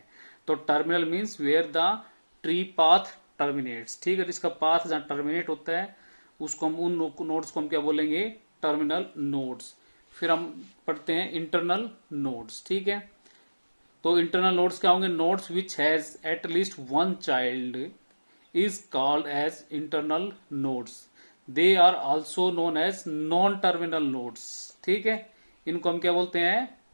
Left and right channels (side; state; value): both; inverted; correlation -1.00